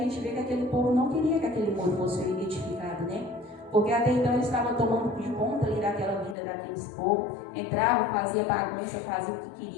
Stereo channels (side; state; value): right; drops out; at 6.4 s